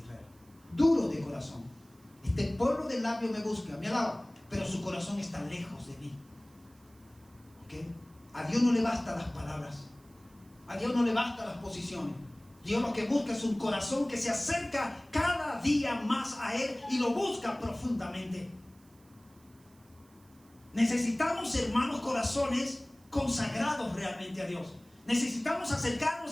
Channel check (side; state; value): right; noise; hiss, 30 dB below the sound